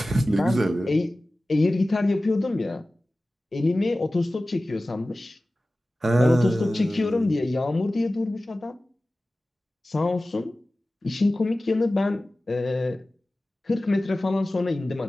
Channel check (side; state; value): both; normal; correlation 0.96